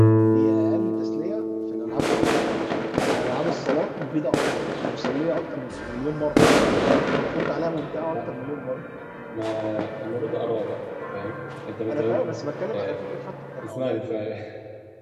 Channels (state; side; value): identical; both; correlation 1.00